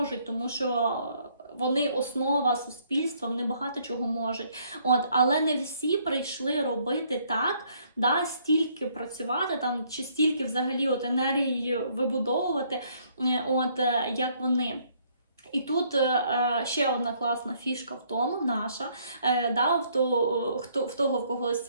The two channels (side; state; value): both; inverted; correlation -0.66